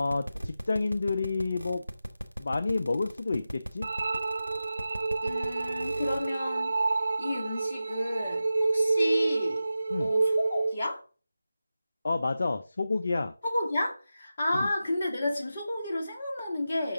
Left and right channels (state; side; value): inverted; both; correlation -0.92